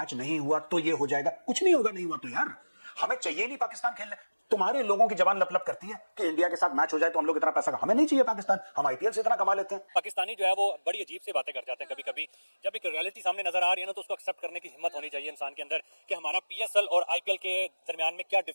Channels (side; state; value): both; inverted; correlation -1.00